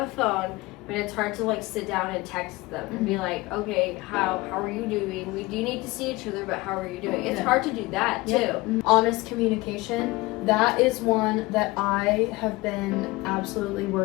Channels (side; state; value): right; quieter; 21.4 dB